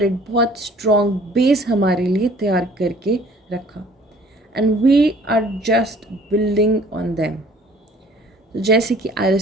बहुत स्ट्रॉन्ग बेस हमारे लिए तैयार करके रखा, and we are just building on them. तो जैसे कि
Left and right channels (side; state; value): both; normal; correlation 0.54